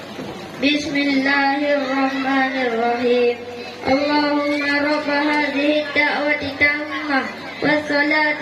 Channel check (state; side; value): identical; both; correlation 1.00